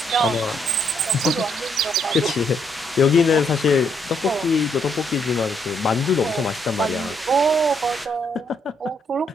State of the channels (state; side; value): normal; both; correlation 0.73